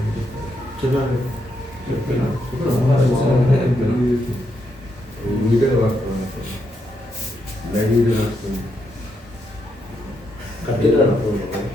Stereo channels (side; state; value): both; normal; correlation 0.80